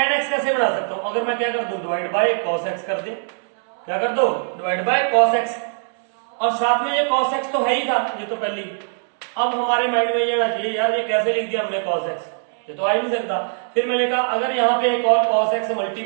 x कैसे बना सकता हूं, अगर मैं क्या कर दूं डिवाइड बाय cos x कर दूं, क्या कर दो डिवाइड बाय cos x, और साथ में ये cos x तो है ही था ये तो पहले, अब हमारे माइंड में ये आना चाहिए यार ये कैसे लिख दिया हमने cos x, ये तो आ ही नहीं सकता। फिर मैंने कहा अगर यहाँ पे एक और cos x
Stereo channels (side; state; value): left; silent; 65 dB below the other